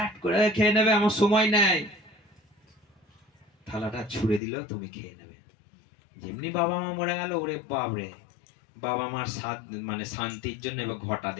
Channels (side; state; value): right; drops out; at 4.4 s